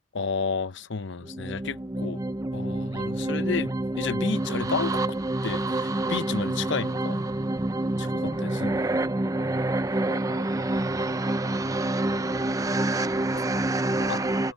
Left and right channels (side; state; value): both; normal; correlation 0.61